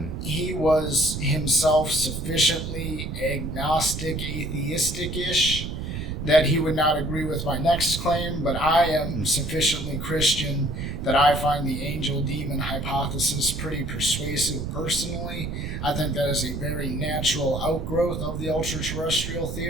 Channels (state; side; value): noise; right; rumble, 5 dB below the sound